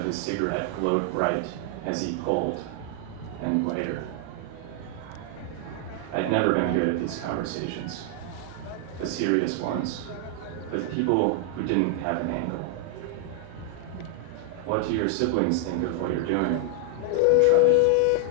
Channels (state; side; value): different; both; correlation 0.00